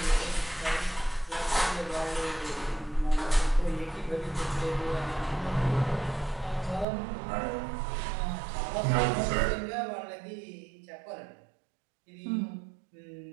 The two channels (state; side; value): drops out; left; at 6.9 s